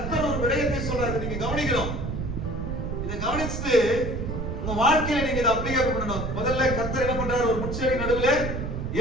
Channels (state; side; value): noise; right; rumble, 5 dB below the sound